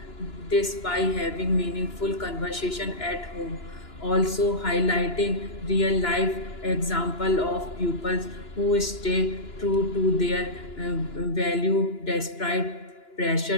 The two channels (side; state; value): right; late; 2.9 ms